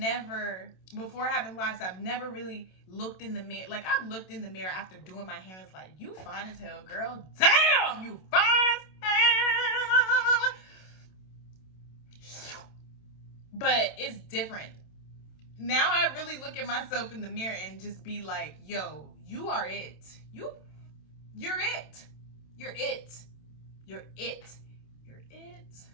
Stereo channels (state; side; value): late; right; 27 ms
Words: before having locks, I've never really looked in the mirror. Like, I've looked in the mirror after doing my hair and it's like, you fine as hell, girl. Damn, you fine as hell. But it's different. Now I really look at myself in the mirror and just be like, yo, you are it. You're it. You're it. You're it. You're it.